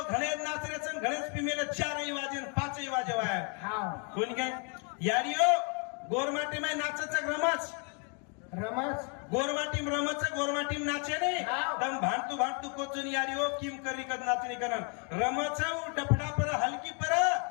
घणे नाचरेच घणेच पिमेले 4 वाजेन 5 वाजे वाया कोणी काय यारियो गोरमाटी माय नाचच रमच गोरमाटीम रमच गोरमाटीम नाचे ने तम भांडतू कोचून यारियो किम करी कद नाचणी करन रमच डफडा पर हलकी पर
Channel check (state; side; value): quieter; right; 37.4 dB